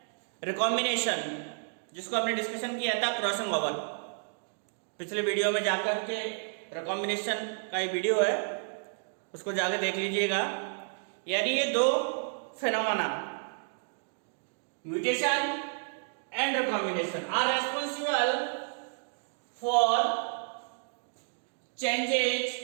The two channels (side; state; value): left; silent; digital silence